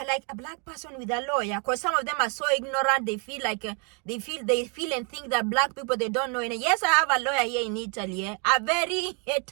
like, a black person with a lawyer. Because some of them are so ignorant. They feel like, they feel and think that black people, they don't know anything. Yes, I have a lawyer here in Italy. A very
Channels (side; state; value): left; quieter; 36.6 dB